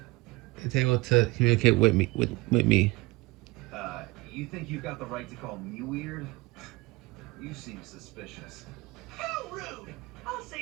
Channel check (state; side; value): quieter; left; 22.6 dB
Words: able to communicate with me. With me. You think you've got the right to call me weird? You seem suspicious. How rude! I'll say